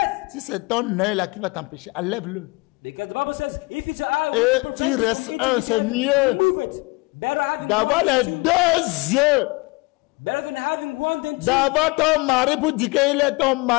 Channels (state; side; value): quieter; right; 26.3 dB